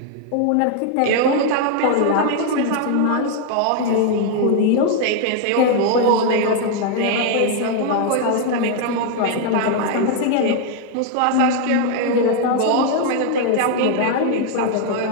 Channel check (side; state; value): both; different; correlation 0.00